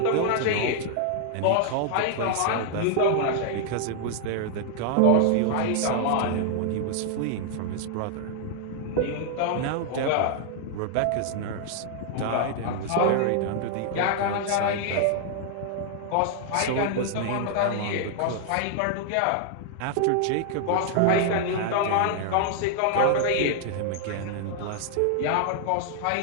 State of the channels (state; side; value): different; both; correlation 0.00